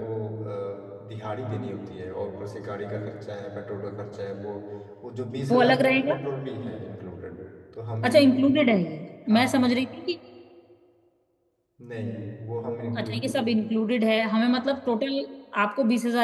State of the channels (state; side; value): identical; both; correlation 1.00